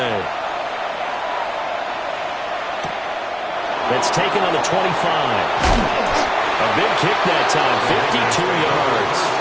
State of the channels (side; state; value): both; identical; correlation 1.00